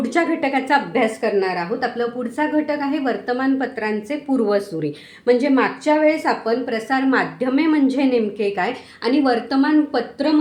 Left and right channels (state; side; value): identical; both; correlation 1.00